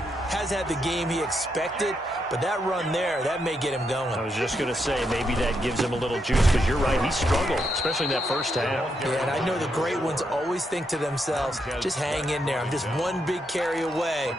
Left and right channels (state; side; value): normal; both; correlation 0.80